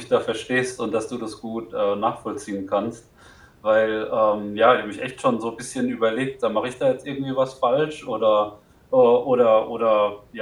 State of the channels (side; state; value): both; identical; correlation 1.00